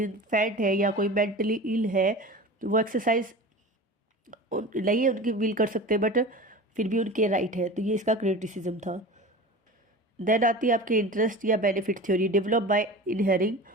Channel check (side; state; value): both; normal; correlation 0.34